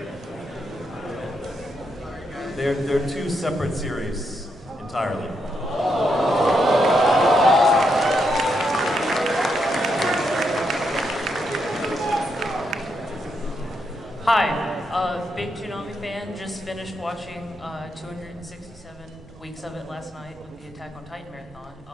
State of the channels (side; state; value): right; noise; rumble, 25 dB below the sound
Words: They're two separate series entirely. Hi, big Toonami fan. Just finished watching 267 weeks of it last night with the Attack on Titan marathon.